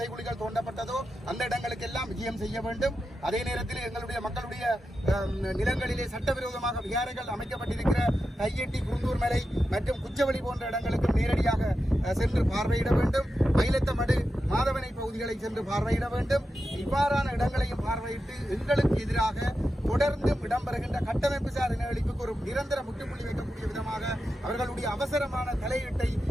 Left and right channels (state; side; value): normal; both; correlation 0.90